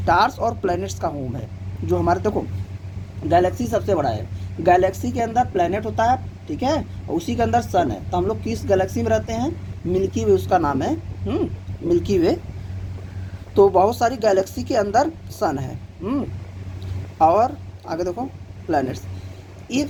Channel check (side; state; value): both; identical; correlation 1.00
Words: और प्लैनेट्स का होम है। जो हमारे देखो गैलेक्सी सबसे बड़ा है, गैलेक्सी के अंदर प्लैनेट होता है, ठीक है, और उसी के अंदर सन है, तो हम लोग किस गैलेक्सी में रहते हैं, मिल्की वे उसका नाम है, मिल्की वे। तो बहुत सारी गैलेक्सी के अंदर सन है, और आगे देखो planets,